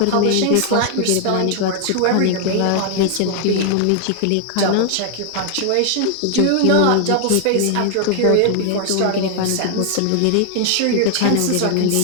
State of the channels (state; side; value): different; both; correlation 0.00